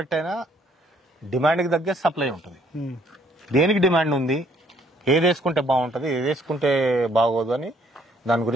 అయినా డిమాండ్ కి తగ్గ సప్లై ఉంటుంది. దేనికి డిమాండ్ ఉంది, ఏది వేసుకుంటే బాగుంటుంది, ఏది వేసుకుంటే బాగోదు అని దాని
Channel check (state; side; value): normal; both; correlation 0.64